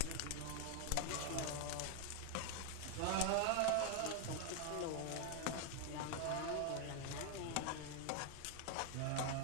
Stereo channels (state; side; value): different; both; correlation 0.00